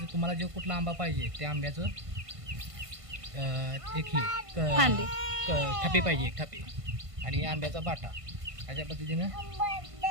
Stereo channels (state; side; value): late; left; 1.5 ms